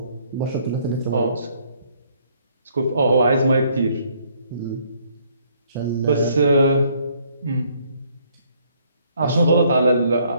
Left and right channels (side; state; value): both; inverted; correlation -0.65